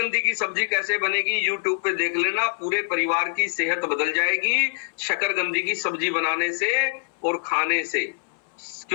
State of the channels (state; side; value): silent; right; 62 dB below the other